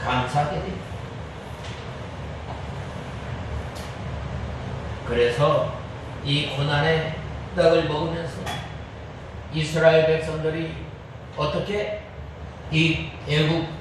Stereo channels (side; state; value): both; identical; correlation 1.00